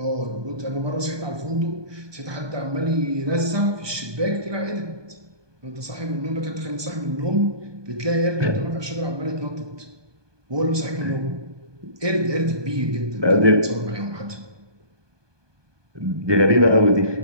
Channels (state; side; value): late; left; 1.2 ms